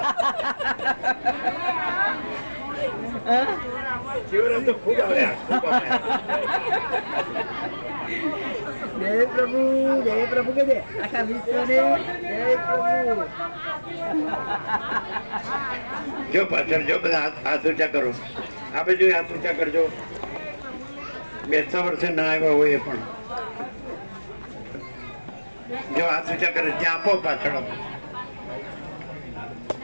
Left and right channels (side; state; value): both; inverted; correlation -1.00